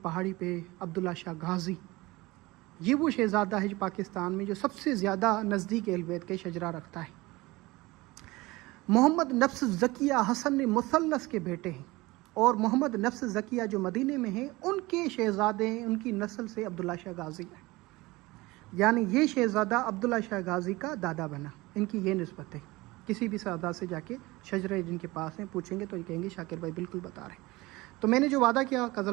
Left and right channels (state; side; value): quieter; left; 21.2 dB